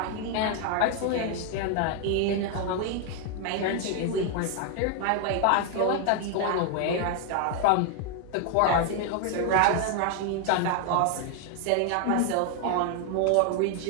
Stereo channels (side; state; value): both; different; correlation 0.00